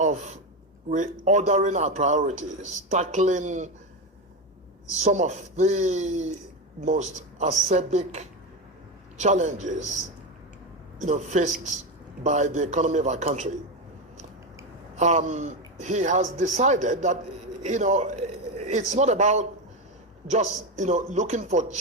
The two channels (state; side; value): normal; both; correlation 0.14